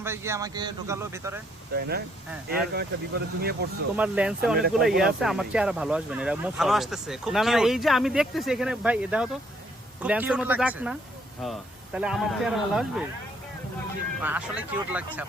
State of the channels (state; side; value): normal; both; correlation 0.68